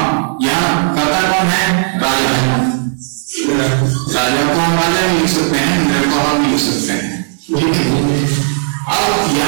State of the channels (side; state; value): left; silent; digital silence